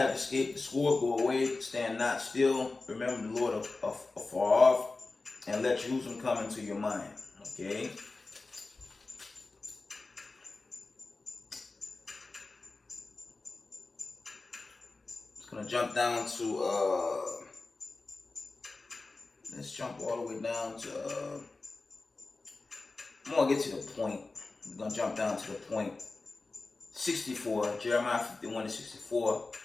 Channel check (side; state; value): right; quieter; 3.6 dB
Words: sword, go away, stand not still, remember the Lord afar off, and let Jerusalem come into your mind. Okay? It's going to jump down to, let's jump all the way down to, I'm going to get to the point. I'm going to jump down to the point. 64, Jeremiah 51:64.